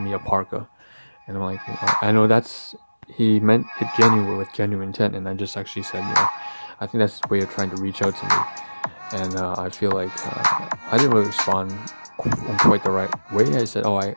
a parka, and I'm like, I know he meant it with genuine intent, and I just actually said, I think that's his way of trying to reach out to me. And I feel like I didn't really respond in quite the right way. I said, I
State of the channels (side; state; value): both; inverted; correlation -1.00